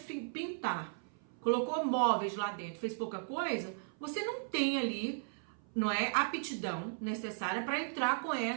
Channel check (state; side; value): silent; left; 54 dB below the other